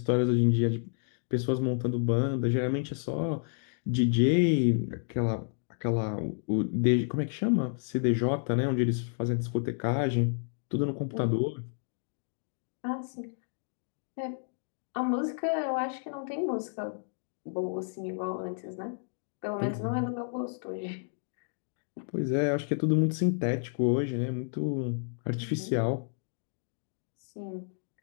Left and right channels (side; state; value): right; silent; digital silence